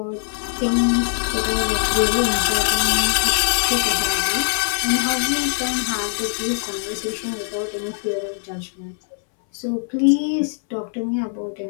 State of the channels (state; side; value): silent; right; 63 dB below the other